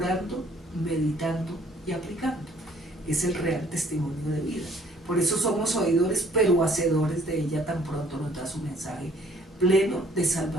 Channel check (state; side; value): normal; both; correlation 0.59